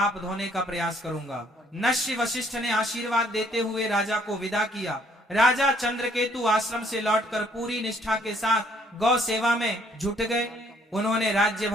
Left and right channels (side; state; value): both; normal; correlation 0.64